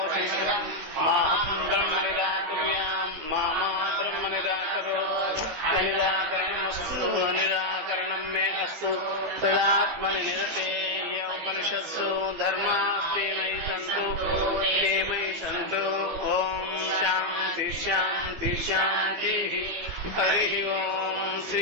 మాహం బ్రహ్మ నిరాకుర్యాం మా బ్రహ్మ నిరాకరో నిరాకరణమస్తు నిరాకరణం మే అస్తు తదాత్మని నిరతే ఉపనిషత్సు ధర్మాస్తే మయి సంతు ఓం శాంతి శాంతి శాంతి. హరి ఓం శ్రీ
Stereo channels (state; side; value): late; left; 14 ms